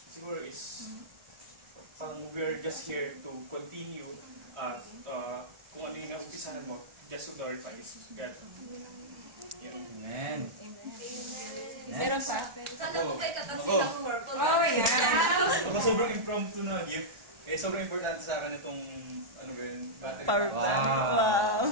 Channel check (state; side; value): late; left; 1.4 ms